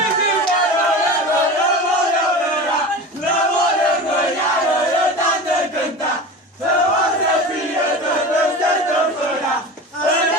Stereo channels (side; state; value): both; normal; correlation 0.31